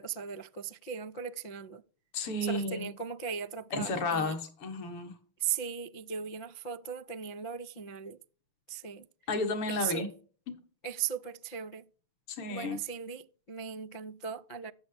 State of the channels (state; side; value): late; right; 5.9 ms